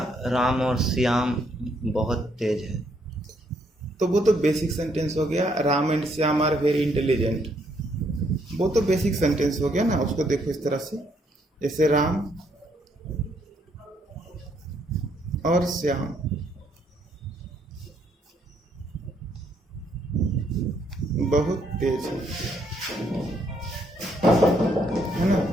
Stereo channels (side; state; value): both; normal; correlation 0.71